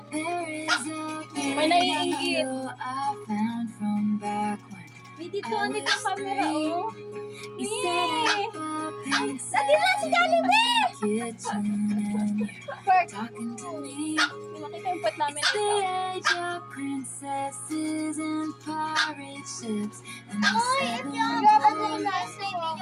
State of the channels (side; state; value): both; identical; correlation 1.00